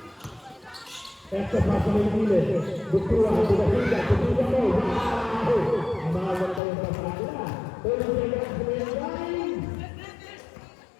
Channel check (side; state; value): right; drops out; at 6.6 s